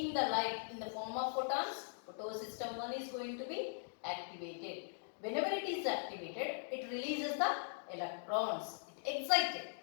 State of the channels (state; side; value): silent; right; digital silence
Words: the light in the form of photons, photosystem 1 is going to be activated. Whenever it is activated, it releases the electrons. It excited